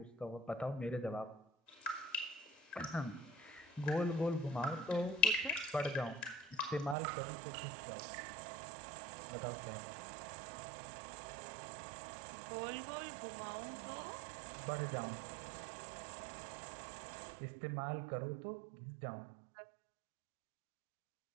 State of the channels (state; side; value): drops out; left; at 7.0 s